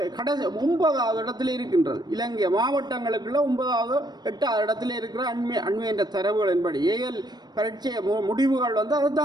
கடைசி 9வது இடத்துல இருக்கின்றது. இலங்கை மாவட்டங்களுக்குள்ள 9வது 8வது இடத்துல இருக்கிற அண்மை என்ற தரவுகளின்படி ஏஎல் பரீட்சை முடிவுகள் அதை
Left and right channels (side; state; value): left; late; 0.20 ms